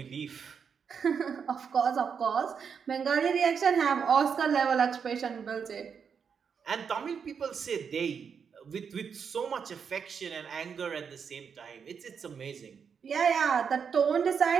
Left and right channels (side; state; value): left; quieter; 6.6 dB